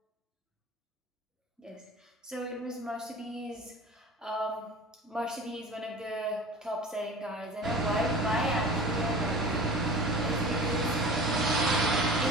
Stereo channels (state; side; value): normal; both; correlation 0.38